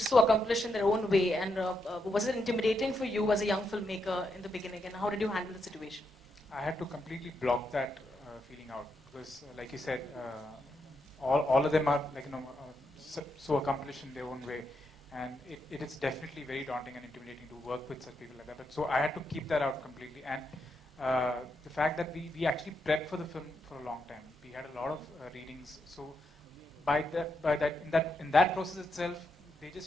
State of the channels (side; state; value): both; normal; correlation 0.82